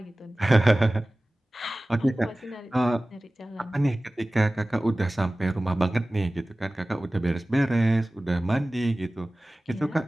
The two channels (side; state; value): both; normal; correlation 0.97